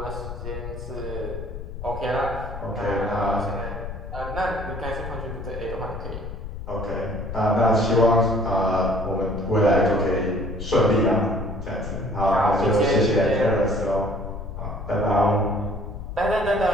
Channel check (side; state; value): left; noise; rumble, 9 dB below the sound